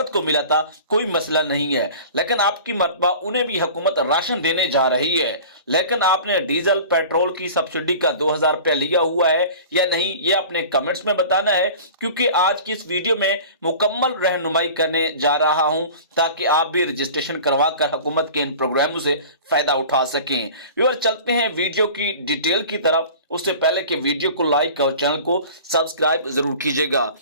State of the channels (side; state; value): both; inverted; correlation -0.40